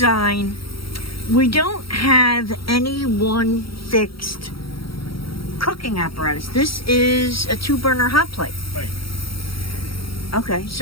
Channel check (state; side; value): late; right; 0.75 ms